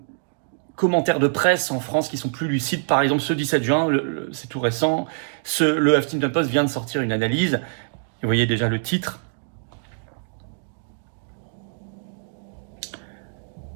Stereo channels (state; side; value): silent; left; digital silence